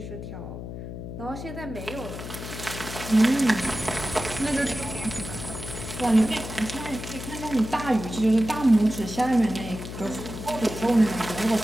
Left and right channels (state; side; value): noise; left; hum, 9 dB below the sound